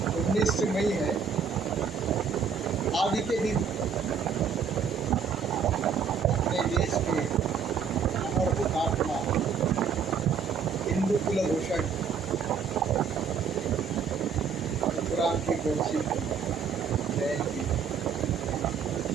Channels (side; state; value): left; quieter; 6.3 dB